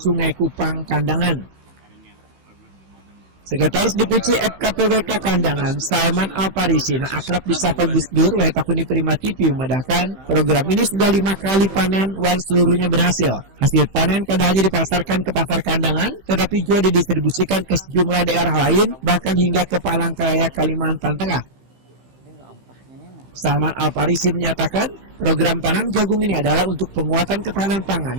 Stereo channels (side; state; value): left; late; 15 ms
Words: Kupang, Kandangan. Sekretaris DPC FKPWK Kandangan, Salman Alparisi, yang akrab disapa Gus Dur, Wetakuni Prima TV, memedahkan program ini sudah 5 kali panen, seluruhnya berhasil. Hasil panen kadang hanya dipasarkan ke pasar Kandangan, tetapi juga didistribusikan ke sejumlah daerah lain, bahkan hingga ke Palangkaraya, Kalimantan Tengah. Salman Alparisi menyatakan program tanam jagung ini adalah untuk penguatan ketahanan pangan